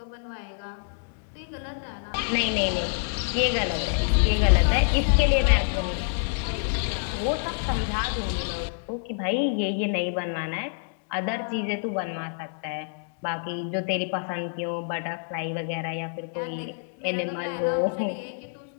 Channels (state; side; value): silent; right; digital silence